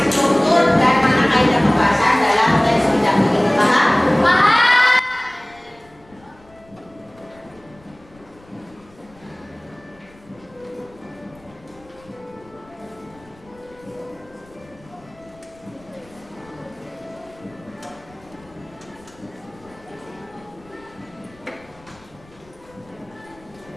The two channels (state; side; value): noise; left; rumble, 27 dB below the sound